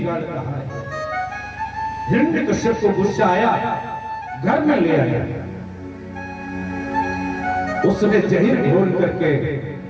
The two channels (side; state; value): both; identical; correlation 1.00